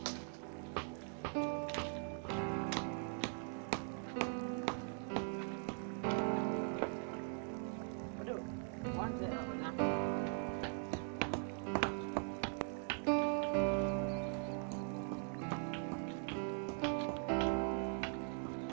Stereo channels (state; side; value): silent; left; 50 dB below the other